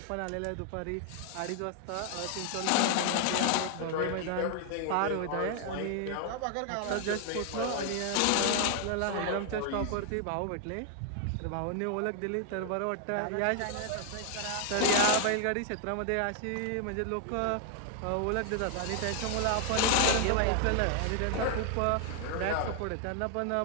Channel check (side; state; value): both; different; correlation 0.00